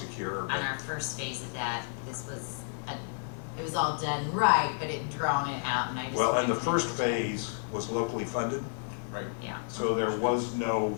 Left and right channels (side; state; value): right; silent; digital silence